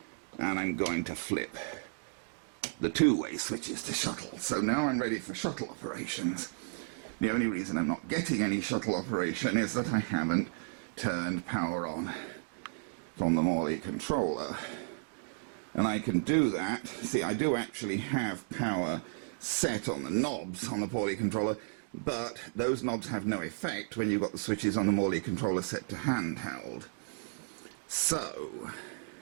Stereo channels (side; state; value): left; silent; digital silence